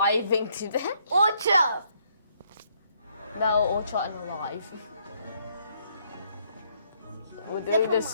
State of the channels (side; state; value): both; inverted; correlation -0.70